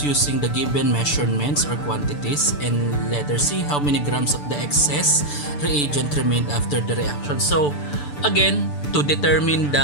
using the given measurements or quantities, and letter C, how many grams of the excess reagent remained after the reaction. So again, to determine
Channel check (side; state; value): right; late; 6.9 ms